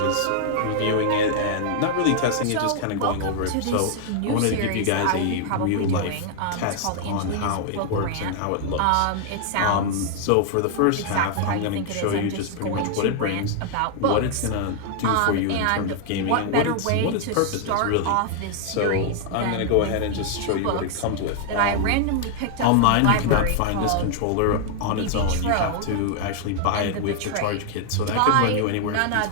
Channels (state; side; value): different; both; correlation 0.00